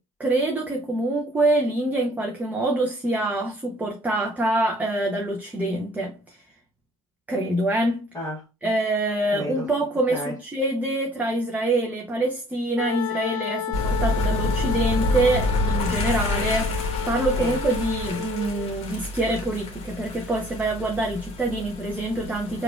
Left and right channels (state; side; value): normal; both; correlation 0.56